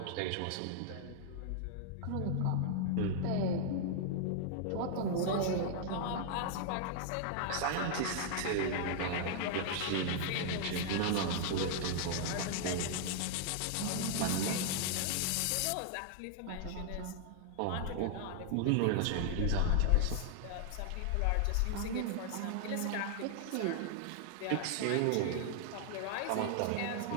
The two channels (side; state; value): both; different; correlation -0.01